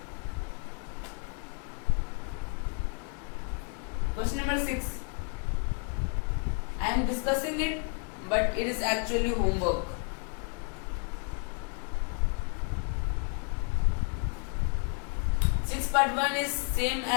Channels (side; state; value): right; quieter; 37.6 dB